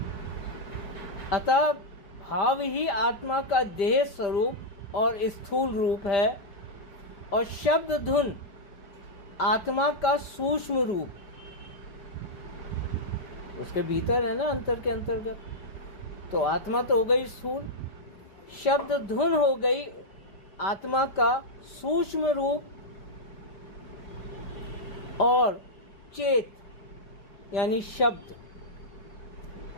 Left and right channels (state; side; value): late; right; 5.1 ms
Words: अतः भाव ही आत्मा का देह स्वरूप और स्थूल रूप है, और शब्द धुन आत्मा का सूक्ष्म रूप। उसके भीतर है ना, अंतर के अंतर्गत। तो आत्मा तो हो गई स्थूल, शब्द धुन हो गई आत्मा का सूक्ष्म रूप और चेत यानी शब्द,